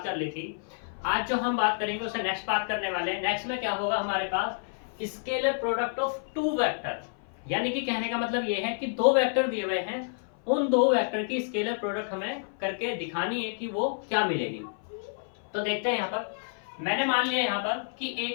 कर ली थी। आज जो हम बात करेंगे उससे नेक्स्ट बात करने वाले हैं। नेक्स्ट में क्या होगा, हमारे पास scalar product of two vector, यानी कि कहने का मतलब ये है कि दो वेक्टर दिए हुए हैं, उन दो वेक्टर की स्केलर प्रोडक्ट हमें करके दिखानी है कि वो क्या मिलेगी। तो देखते हैं यहाँ पर मैंने मान लिया यहाँ पर कि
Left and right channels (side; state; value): right; silent; 56 dB below the other